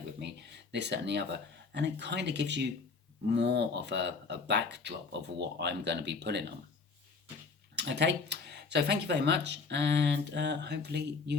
with me, this, that and the other, and it kind of gives you more of a backdrop of what I'm going to be putting on. Okay, so thank you very much, and hopefully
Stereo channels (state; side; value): quieter; right; 4.6 dB